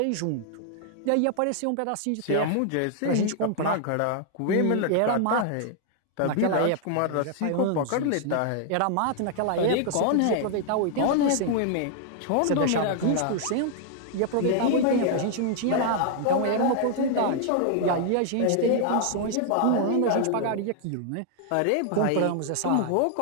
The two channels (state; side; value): different; both; correlation 0.00